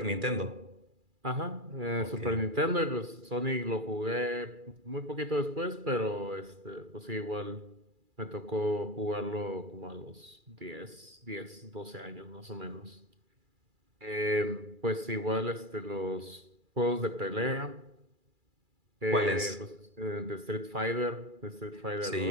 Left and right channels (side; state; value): left; late; 2.3 ms